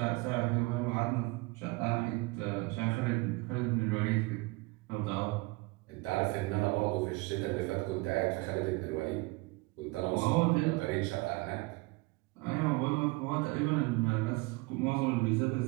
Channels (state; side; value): quieter; left; 24.6 dB